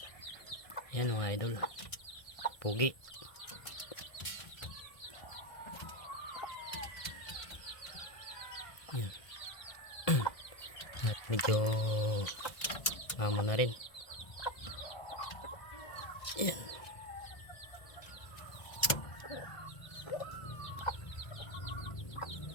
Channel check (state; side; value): late; right; 2.0 ms